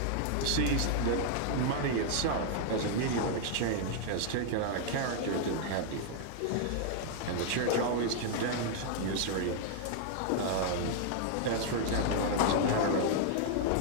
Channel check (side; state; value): both; different; correlation 0.00